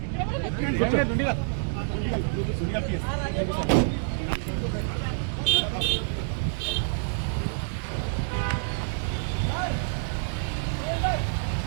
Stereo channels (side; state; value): left; silent; digital silence